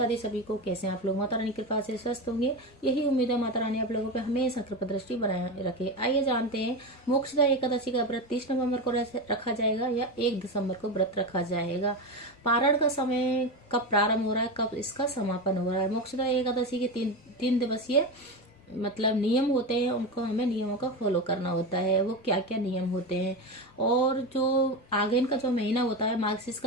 दी। सभी को कैसे हैं आप लोग? माता रानी की कृपा से स्वस्थ होंगे, यही उम्मीद है। माता रानी आप लोगों पे हमेशा कृपा दृष्टि बनाए रखे। आइए जानते हैं, मोक्षदा एकादशी का व्रत 30 नवंबर को रखा जाएगा या 1 दिसंबर को व्रत रखा जाएगा। पारण का समय कब प्रारंभ हो रहा है, कब इसका समापन हो रहा है। मोक्षदा एकादशी के तीन दिवसीय नियम होते हैं, उनको हमें नियमों का फॉलो करना होता है। वो क्या क्या नियम होते हैं, और जो आगन का जो महीना होता है, मार्गशीर्ष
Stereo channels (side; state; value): both; normal; correlation 0.19